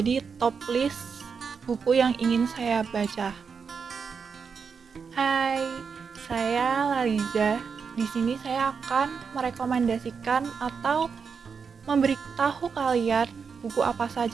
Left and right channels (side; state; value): left; quieter; 5.9 dB